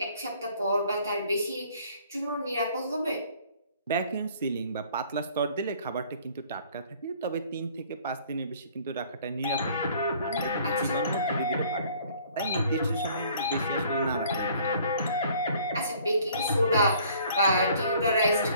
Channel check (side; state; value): both; inverted; correlation -0.56